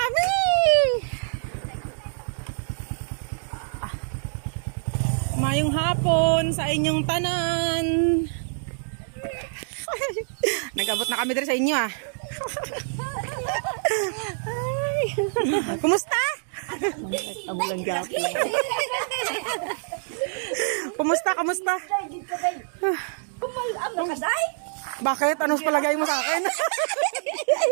Mayong hapon sa inyong tanan. Nag-abot na kami dito sa inyo ah. Ay. Kumusta? Amulang gapi. Kumusta? Kumusta? Bakit? Anong palagay mo sa akin?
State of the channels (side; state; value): left; silent; digital silence